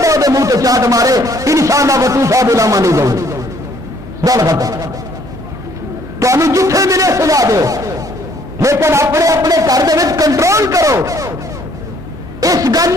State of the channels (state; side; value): normal; both; correlation 0.63